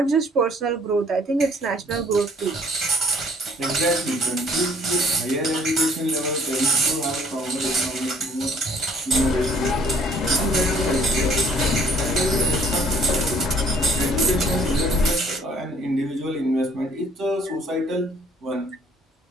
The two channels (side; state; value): both; normal; correlation 0.59